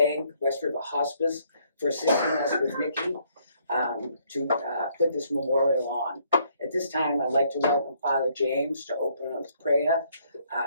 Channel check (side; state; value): both; inverted; correlation -0.68